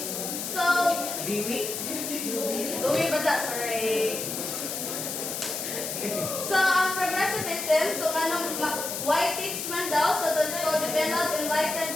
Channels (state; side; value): noise; left; hiss, 4 dB below the sound